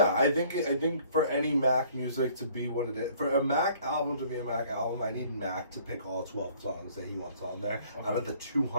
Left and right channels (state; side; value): inverted; both; correlation -0.57